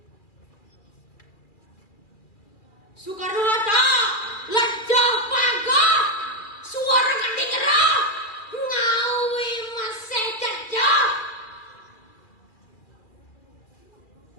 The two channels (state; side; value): late; right; 2.4 ms